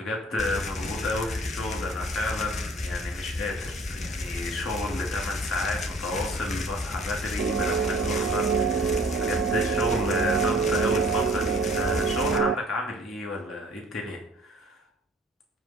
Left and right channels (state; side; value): normal; both; correlation 0.53